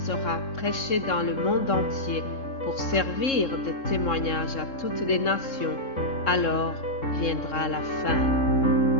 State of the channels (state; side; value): late; right; 3.7 ms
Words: sera prêchée dans le monde entier pour servir de témoignage à toutes les nations. Alors viendra la fin.